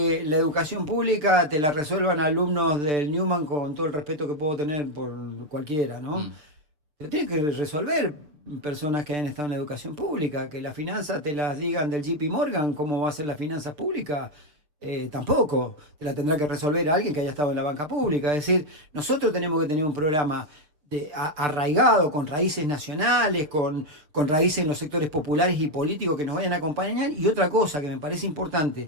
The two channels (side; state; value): left; late; 6.7 ms